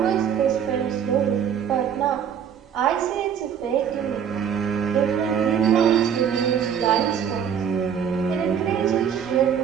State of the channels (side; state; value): left; quieter; 8.2 dB